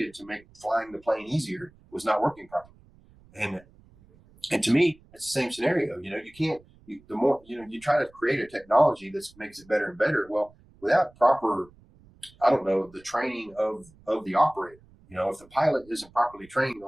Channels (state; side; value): noise; right; rumble, 27 dB below the sound